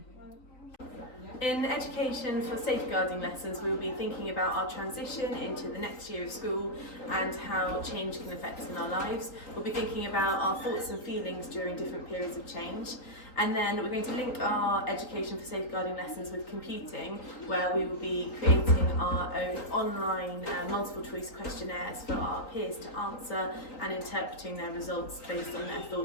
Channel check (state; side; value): late; right; 3.8 ms